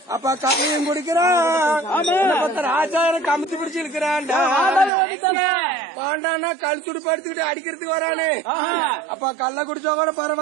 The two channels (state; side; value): drops out; left; at 4.9 s